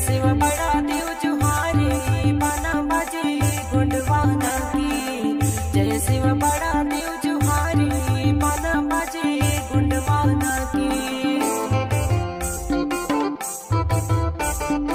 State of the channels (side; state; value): both; identical; correlation 1.00